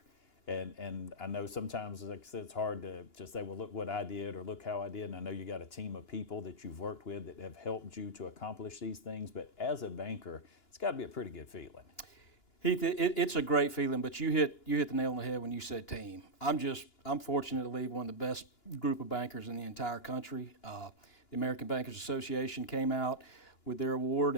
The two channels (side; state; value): right; late; 2.9 ms